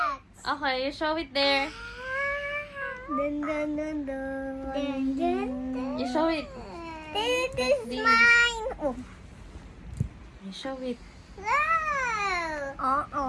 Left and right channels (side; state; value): both; identical; correlation 1.00